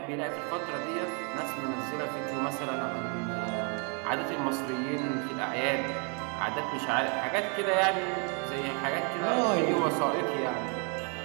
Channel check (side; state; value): left; quieter; 36.8 dB